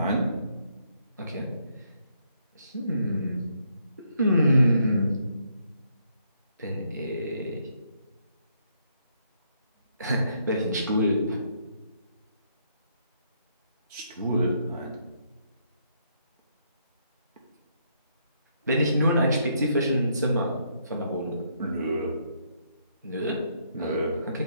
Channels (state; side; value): inverted; both; correlation -0.73